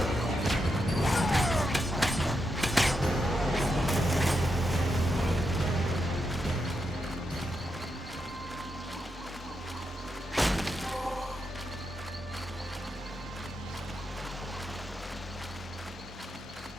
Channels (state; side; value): normal; both; correlation 0.84